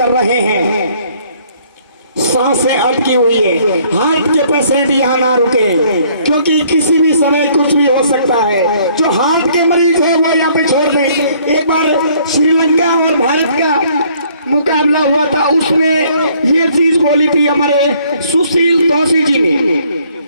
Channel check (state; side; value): inverted; both; correlation -0.62